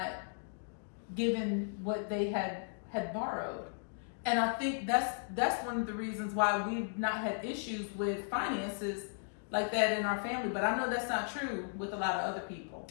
given what they had borrowed. And I think that's one of the reasons why we've not had issues with finances like that in our family. But I know that's not true with a lot of other people.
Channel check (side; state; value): right; silent; digital silence